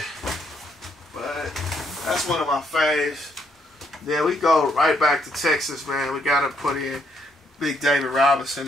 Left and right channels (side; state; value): both; normal; correlation 0.73